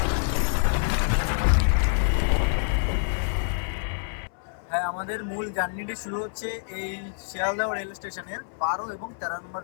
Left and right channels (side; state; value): right; silent; 60 dB below the other